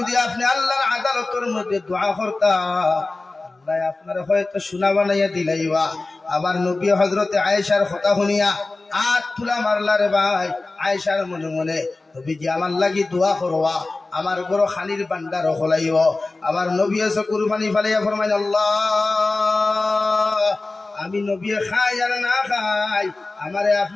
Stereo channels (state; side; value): quieter; right; 3.3 dB